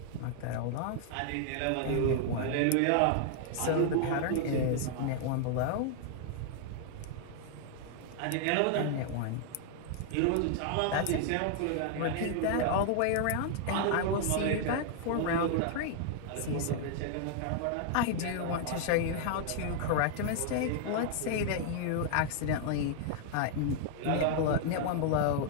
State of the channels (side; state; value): both; different; correlation 0.00